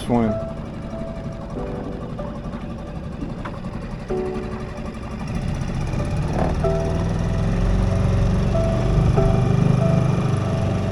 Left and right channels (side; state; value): both; identical; correlation 1.00